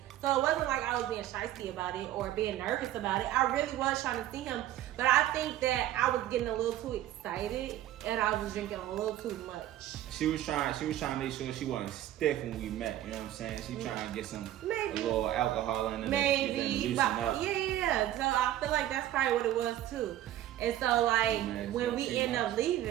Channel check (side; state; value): left; quieter; 13.2 dB